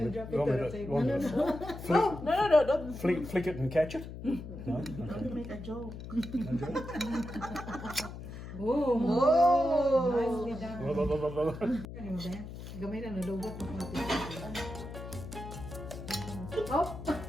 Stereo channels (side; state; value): left; noise; hum, 10 dB below the sound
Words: you drop it on the table? No. No, don't. Flick it and catch it? No? Okay. Make a joke. No joke? Oh, nicely done. Ano mo ba? Gamay na nalugot mo konti. Oh!